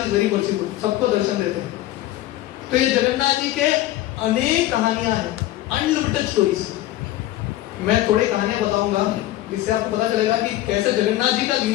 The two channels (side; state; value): right; quieter; 15.1 dB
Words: इज वेरी मर्सीफुल, सबको दर्शन देते हैं। तो ये जगन्नाथ जी के अनेक कहानियां हैं, अनलिमिटेड स्टोरीज। मैं थोड़ी कहानियां बताऊंगा जिससे आपको पता चलेगा कि कैसे जगन्नाथ जी का